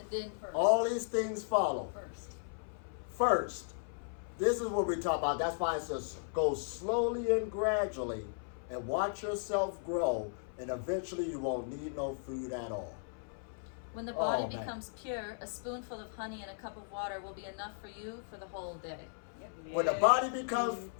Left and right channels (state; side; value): silent; right; 54 dB below the other